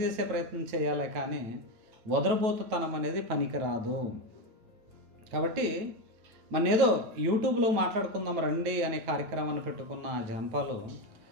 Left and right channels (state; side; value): late; left; 9.1 ms